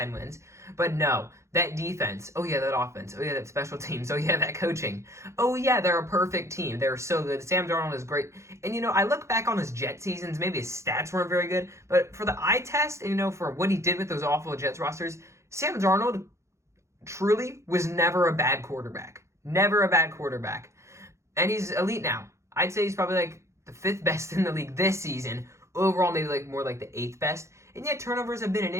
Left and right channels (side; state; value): left; late; 0.14 ms